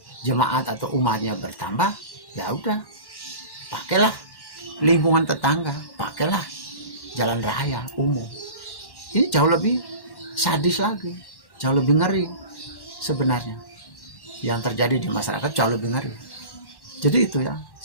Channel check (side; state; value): right; late; 1.1 ms